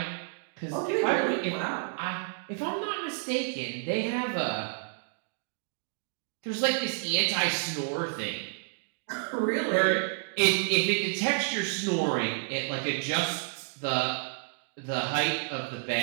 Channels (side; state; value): left; silent; digital silence